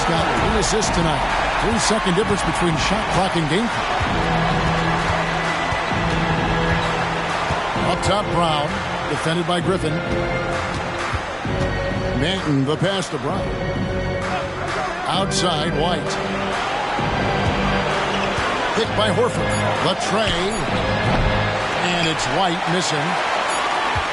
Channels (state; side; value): identical; both; correlation 1.00